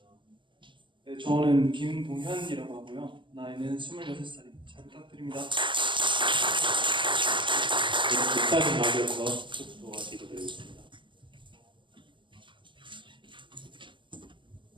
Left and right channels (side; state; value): left; late; 0.24 ms